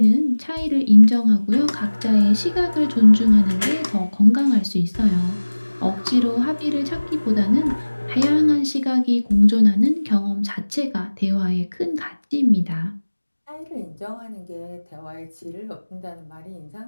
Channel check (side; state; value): both; inverted; correlation -1.00